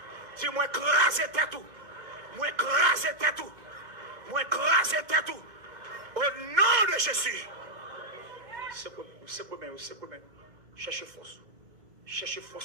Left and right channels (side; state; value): left; late; 2.2 ms